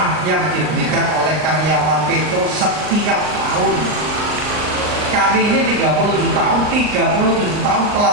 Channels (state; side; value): late; left; 39 ms